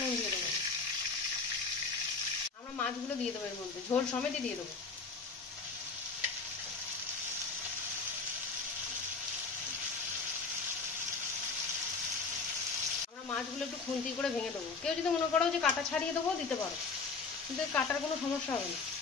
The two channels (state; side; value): quieter; right; 4.4 dB